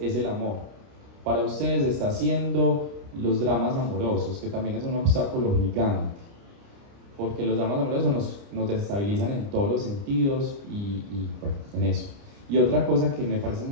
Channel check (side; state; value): left; late; 29 ms